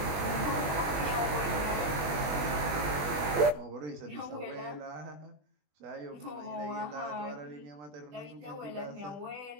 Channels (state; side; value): late; left; 20 ms